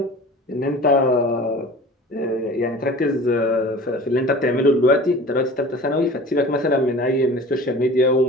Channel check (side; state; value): both; normal; correlation 0.41